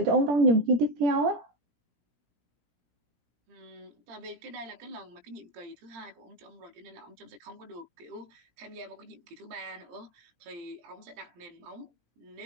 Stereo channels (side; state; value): left; late; 17 ms